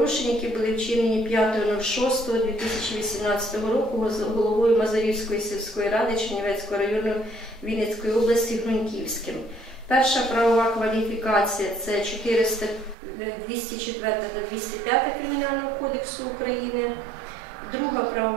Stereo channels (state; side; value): drops out; left; at 13.0 s